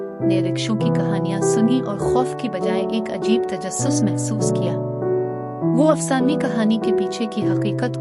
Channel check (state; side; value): identical; both; correlation 1.00